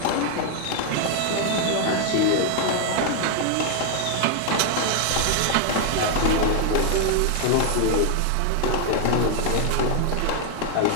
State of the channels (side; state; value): both; different; correlation 0.00